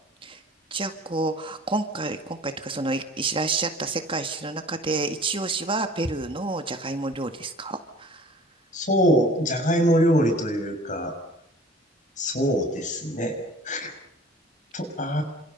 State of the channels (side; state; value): both; normal; correlation 0.47